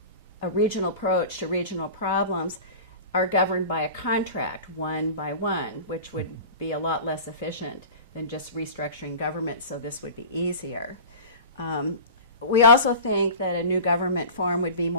a regional approach to regional problems are governed by a contract, one by one, which would be a lot less efficient than just restructuring government, so this would be easier. We also think that a new government form would be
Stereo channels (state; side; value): inverted; both; correlation -0.35